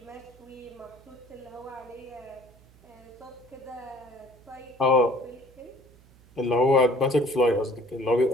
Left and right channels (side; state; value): right; noise; hum, 26 dB below the sound